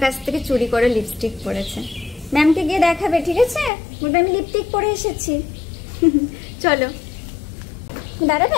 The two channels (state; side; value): drops out; right; at 3.7 s